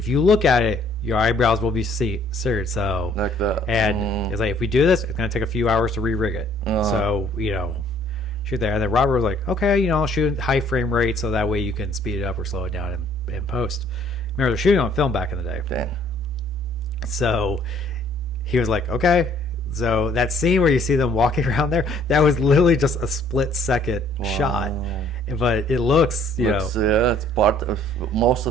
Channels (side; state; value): both; normal; correlation 0.60